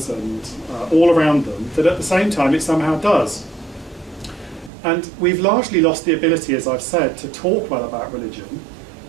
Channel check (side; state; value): left; drops out; at 4.7 s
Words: and all around them that at the same time it somehow does. And we've largely lost the ability, as I've said, to talk well about religion,